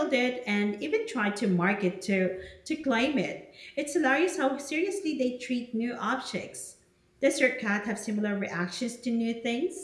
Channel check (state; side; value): identical; both; correlation 1.00